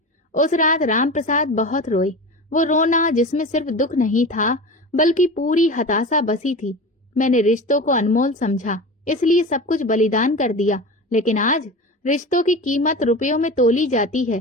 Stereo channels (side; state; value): both; normal; correlation 0.30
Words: उस रात राम प्रसाद बहुत रोए। वो रोना जिसमें सिर्फ दुख नहीं था, बल्कि पूरी हताशा बसी थी। मैंने रिश्तों को अनमोल समझा, इसलिए सब कुछ बलिदान कर दिया, लेकिन आज रिश्तों की कीमत रुपयों में तोली जाती